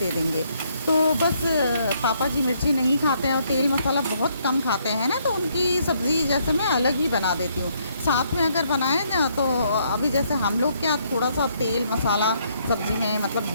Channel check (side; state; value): both; inverted; correlation -0.71